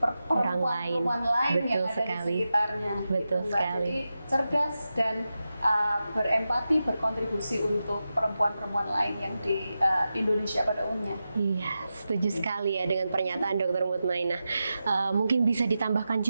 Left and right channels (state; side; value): inverted; both; correlation -0.91